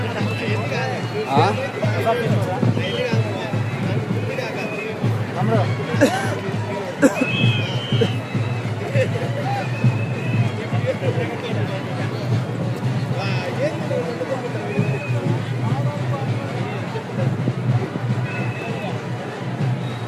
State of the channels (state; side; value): identical; both; correlation 1.00